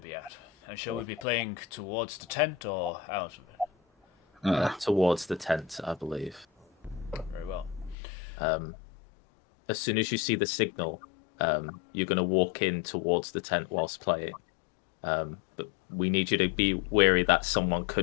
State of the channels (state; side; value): drops out; right; at 8.0 s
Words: at? And shall we be playing towards the tent or out of it? Towards the tent, I believe. Very well. As soon as you see the signal, you're going to walk in towards the tent whilst playing. But we need you to be wary that someone